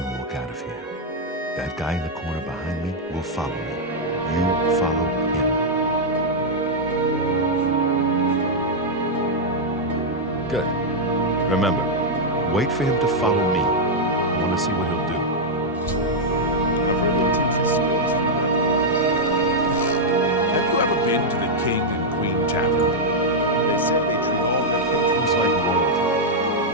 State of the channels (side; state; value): both; normal; correlation -0.03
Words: walk out of here. guy in the corner behind me will follow me. You follow him. Good. Remember, wait for him to follow me. I want to see what he'll do. Have you ever been to the King and Queen Tavern? They said they treat all their patrons like royalty.